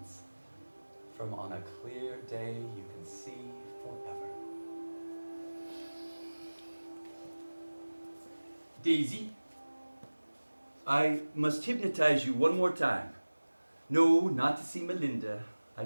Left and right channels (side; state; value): both; inverted; correlation -1.00